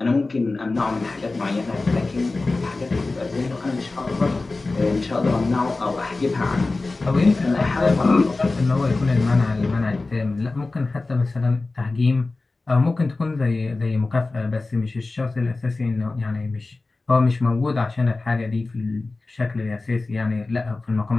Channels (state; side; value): quieter; right; 3.4 dB